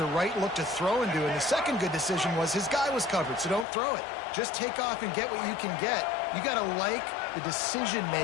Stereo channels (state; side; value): drops out; right; at 3.7 s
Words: right look to throw into. And the second good decision was his guy was covered, so don't throw it. Just take off and get what you can get. You got to like the